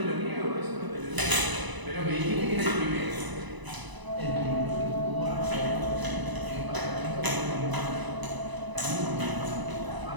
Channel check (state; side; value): late; left; 1.0 ms